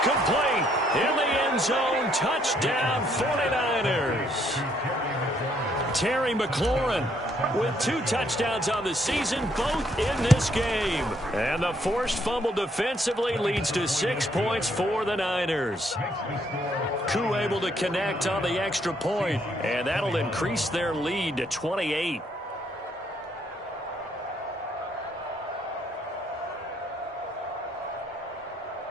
In the end zone, touchdown 49ers. Terry McLaurin with 2 touchdowns on the season, both in this game. And the forced fumble defensively leads to 6 points for the Niners. Koo able to connect on the extra point, and that'll increase their lead to 28.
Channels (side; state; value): both; normal; correlation 0.69